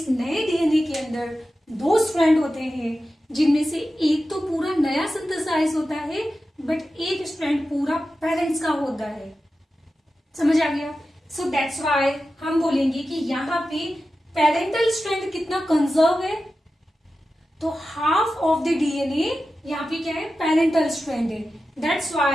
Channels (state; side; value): normal; both; correlation 0.93